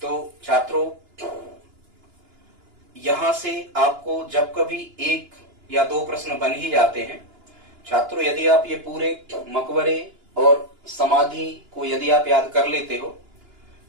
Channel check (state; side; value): late; left; 2.9 ms